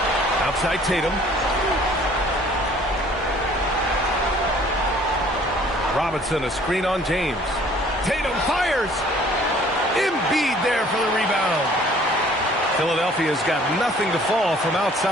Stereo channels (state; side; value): normal; both; correlation 0.55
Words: Outside Tatum. Robinson, a screen on James. Tatum fires. Embiid there for the rebound. Philadelphia's got nothing to fall from